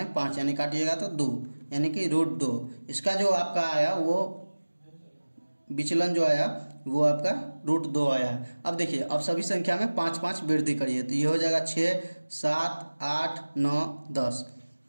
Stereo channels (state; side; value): inverted; both; correlation -1.00